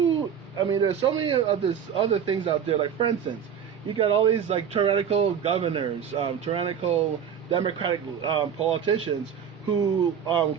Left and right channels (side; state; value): left; quieter; 7.9 dB